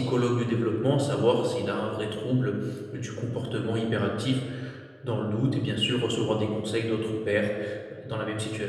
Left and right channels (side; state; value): both; identical; correlation 1.00